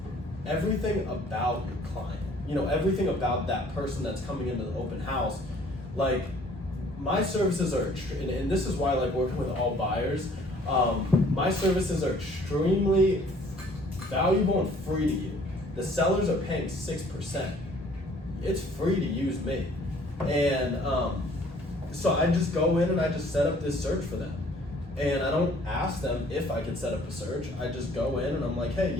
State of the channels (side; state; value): both; normal; correlation 0.56